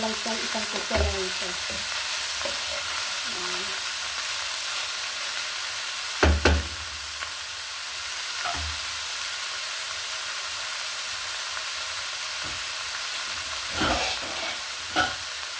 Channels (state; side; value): identical; both; correlation 1.00